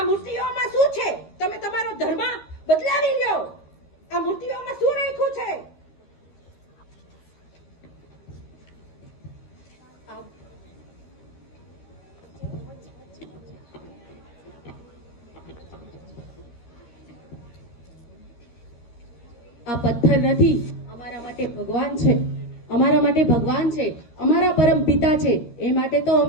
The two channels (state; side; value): late; right; 13 ms